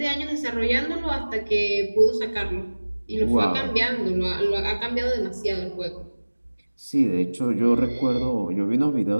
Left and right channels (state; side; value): inverted; both; correlation -1.00